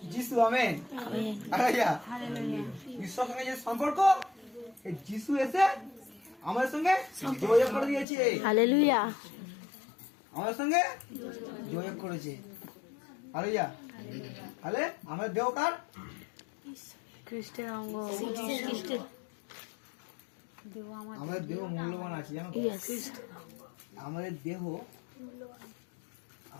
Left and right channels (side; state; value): right; drops out; at 8.1 s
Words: যিশু। Amen amen hallelujah. ঈশ্বরের সঙ্গে যে সম্পর্ক, এই যিশু এসে আমাদের সঙ্গে যোগাযোগ করে দিয়েছে, হালেলুয়া। আমাদের সঙ্গে যোগাযোগ করেছে। হালেলুয়া। তাহলে আমাদের দেহ কার? খ্রিস্টের অঙ্গ। আমাদের দেহ মূল্যবান আছে, জানো তো? ইয়েস আমাদের